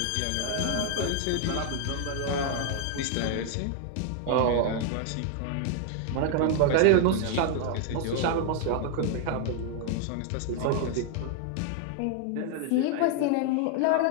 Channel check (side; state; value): both; different; correlation 0.00